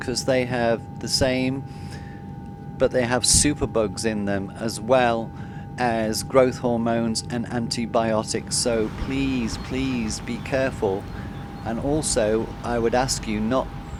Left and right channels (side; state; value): both; identical; correlation 1.00